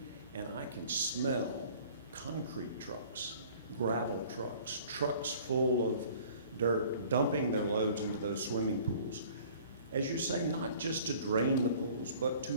and I can smell concrete trucks, gravel trucks, trucks full of dirt, dumping their loads into those swimming pools. As you say, not just to drain the pools, but to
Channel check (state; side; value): inverted; both; correlation -0.50